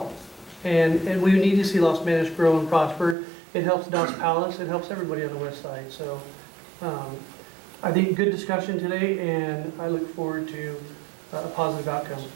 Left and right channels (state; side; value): drops out; left; at 3.2 s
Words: And we need to see Los Banos grow and prosper. It helps Dos Palos, it helps everybody on the west side. So I think good discussion today, and I look forward to a positive outcome.